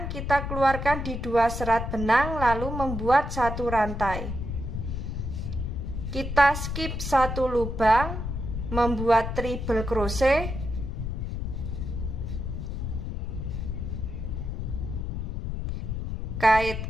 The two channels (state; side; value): noise; left; rumble, 4 dB below the sound